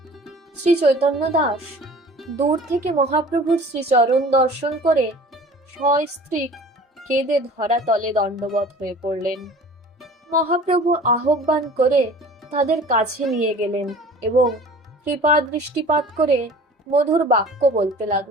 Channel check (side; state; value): both; normal; correlation 0.45